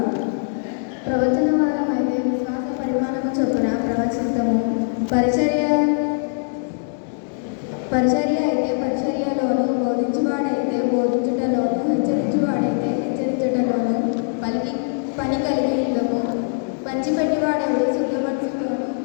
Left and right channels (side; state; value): right; silent; 64 dB below the other